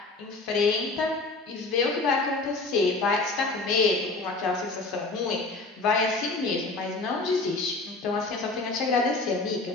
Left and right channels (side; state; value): right; quieter; 3.4 dB